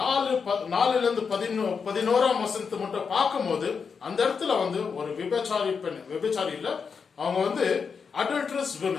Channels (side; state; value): right; quieter; 5.8 dB